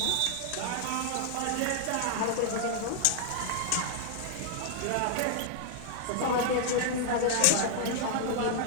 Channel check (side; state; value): both; different; correlation -0.01